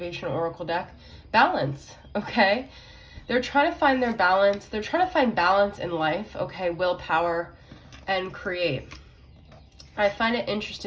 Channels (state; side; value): identical; both; correlation 1.00